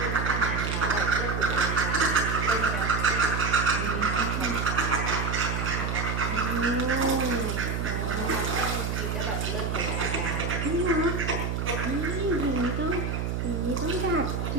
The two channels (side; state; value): right; noise; hum, 1 dB below the sound